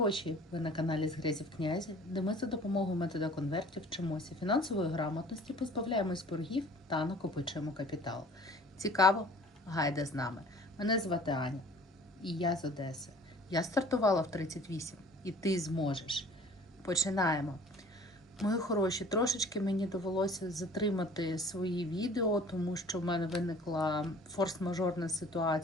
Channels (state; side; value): normal; both; correlation 0.49